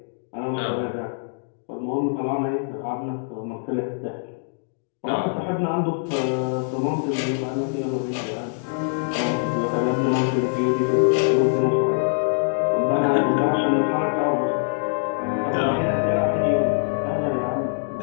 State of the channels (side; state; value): right; silent; digital silence